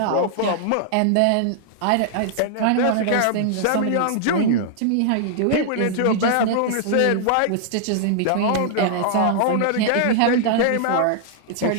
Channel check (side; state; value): both; different; correlation -0.01